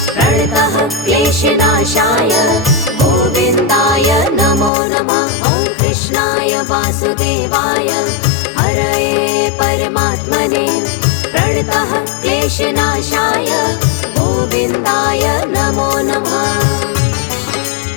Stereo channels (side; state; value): right; drops out; at 4.7 s